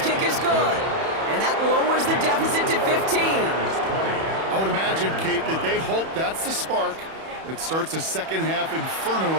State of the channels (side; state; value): left; late; 31 ms